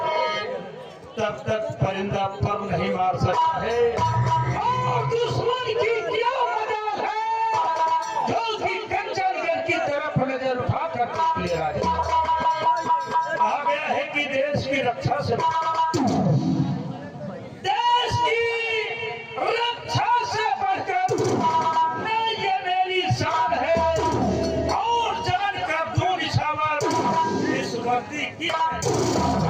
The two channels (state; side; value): identical; both; correlation 1.00